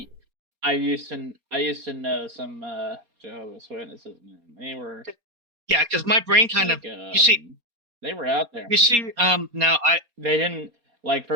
I used to know some Jehovah's Witnesses, man. They were, yeah, because my brain kind of you see, they were out there. You see, now they didn't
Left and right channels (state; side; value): late; left; 4.2 ms